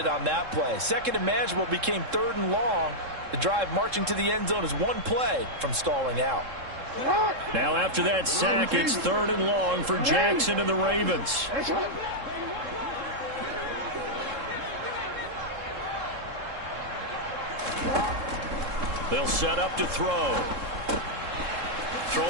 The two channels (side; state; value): left; late; 3.7 ms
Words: on that play. 2nd and manageable became 3rd and long. The drive marching to the end zone is 1 play from stalling out. Now after that sack, it's 3rd and long for Jackson and the Ravens. They'll set up to throw.